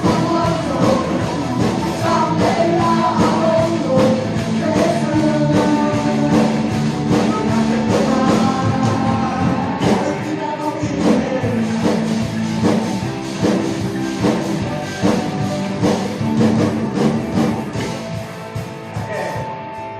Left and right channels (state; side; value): identical; both; correlation 1.00